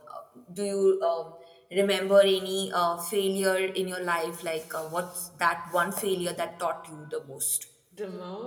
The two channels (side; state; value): both; identical; correlation 1.00